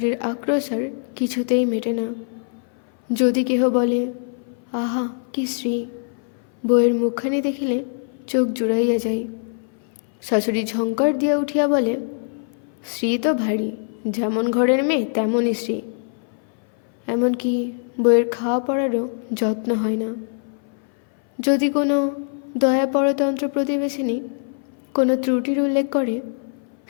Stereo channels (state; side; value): silent; right; 59 dB below the other